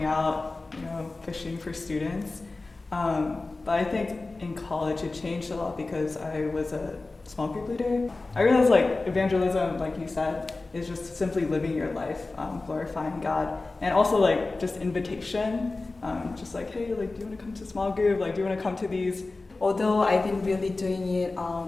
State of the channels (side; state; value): right; quieter; 3.4 dB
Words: out, fishing for students. But I think in college it changed a lot because I was a small group leader. I realized evangelism, like you said, is just simply living your life, glorifying God, and also just invitation, hey, do you want to come to small group? Do you want to come to these? Although I've been really doing it